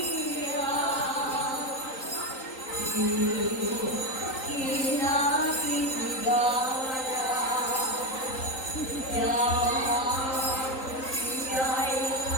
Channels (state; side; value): late; right; 3.8 ms